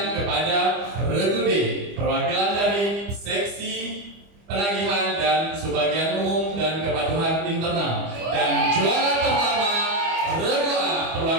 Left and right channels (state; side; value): late; left; 25 ms